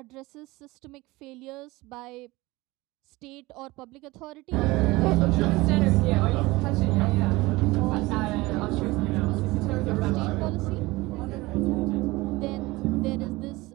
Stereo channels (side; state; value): left; quieter; 21.0 dB